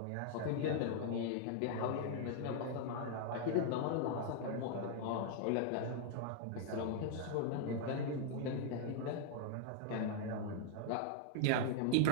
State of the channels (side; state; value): both; different; correlation -0.01